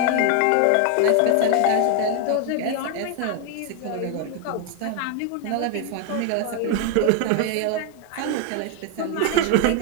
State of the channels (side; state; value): both; different; correlation 0.01